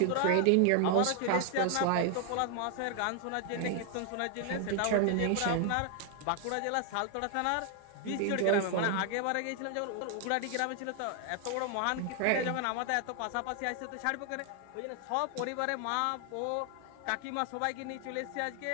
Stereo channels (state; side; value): different; both; correlation 0.00